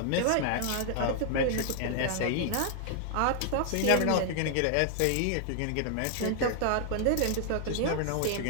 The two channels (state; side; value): different; both; correlation -0.01